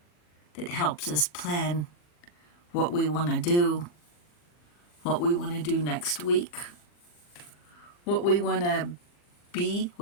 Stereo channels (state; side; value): late; right; 40 ms